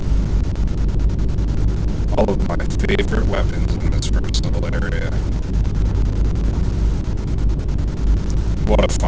all of my favorite weapons in this first little area. What a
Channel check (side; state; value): both; identical; correlation 1.00